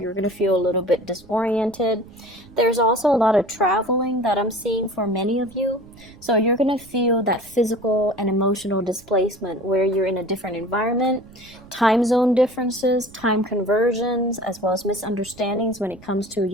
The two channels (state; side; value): noise; right; rumble, 23 dB below the sound